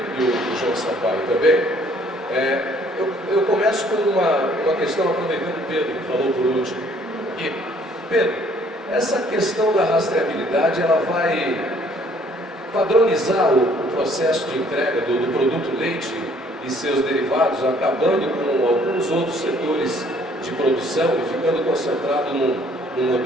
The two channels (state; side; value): normal; both; correlation 0.60